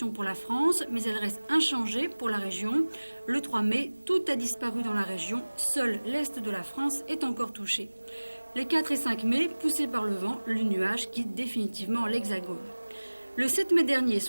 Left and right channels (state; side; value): inverted; both; correlation -1.00